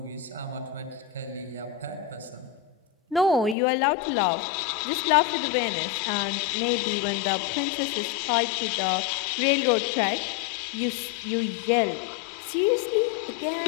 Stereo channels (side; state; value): right; drops out; at 3.6 s